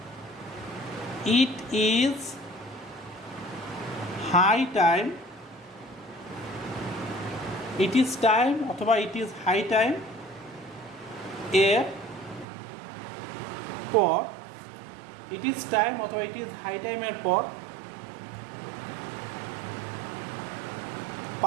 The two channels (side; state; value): left; drops out; at 12.5 s